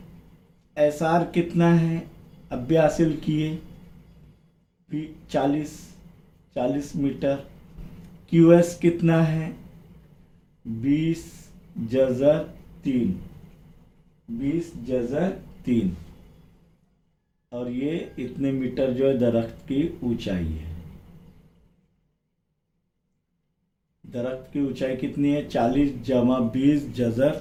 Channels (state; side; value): identical; both; correlation 1.00